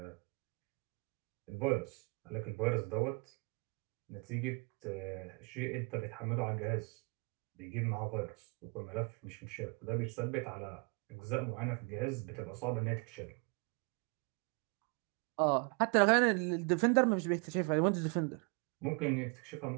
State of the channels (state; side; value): quieter; left; 33.0 dB